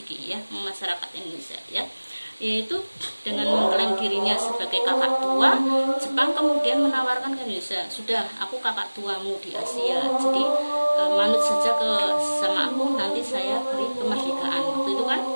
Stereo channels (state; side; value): inverted; both; correlation -1.00